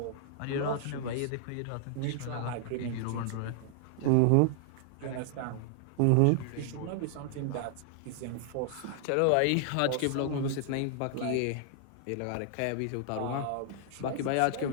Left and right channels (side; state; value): both; different; correlation -0.01